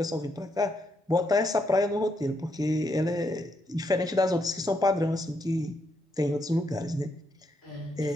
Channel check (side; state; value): both; normal; correlation 0.78